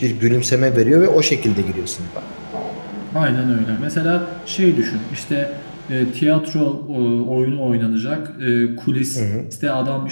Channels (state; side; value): inverted; both; correlation -1.00